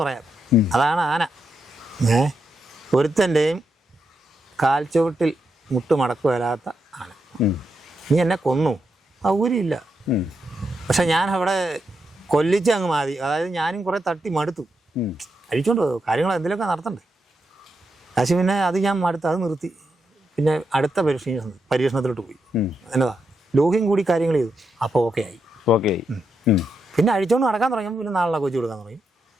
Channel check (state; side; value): normal; both; correlation 0.83